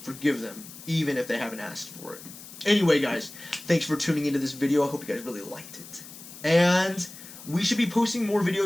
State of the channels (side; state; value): left; noise; hiss, 16 dB below the sound